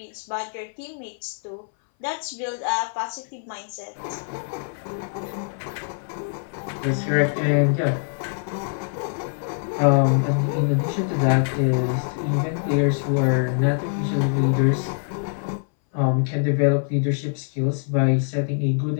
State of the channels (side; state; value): right; silent; 61 dB below the other